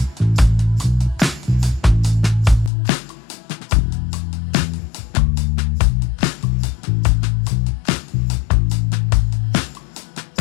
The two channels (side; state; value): right; drops out; at 2.7 s